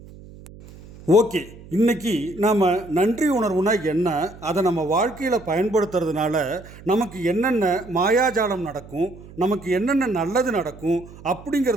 ஓகே, இன்னைக்கு நாம் நன்றி உணர்வுனா என்ன, அதை நம்ம வாழ்க்கையில் பயன்படுத்துறதுனால நமக்கு என்னென்ன மாயாஜாலம் நடக்கும், நமக்கு என்னென்ன நல்லது நடக்கும்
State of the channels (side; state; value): right; noise; hum, 19 dB below the sound